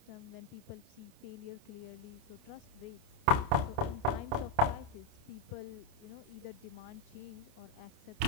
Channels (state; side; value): late; left; 28 ms